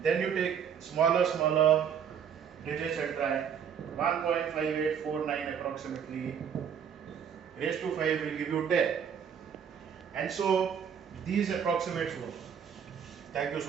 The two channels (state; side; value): quieter; left; 7.8 dB